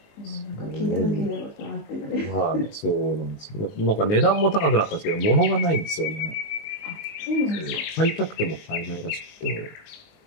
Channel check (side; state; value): right; late; 19 ms